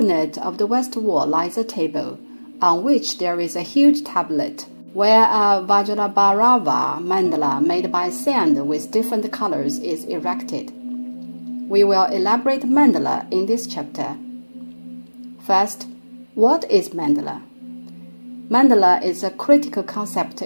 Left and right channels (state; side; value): inverted; both; correlation -1.00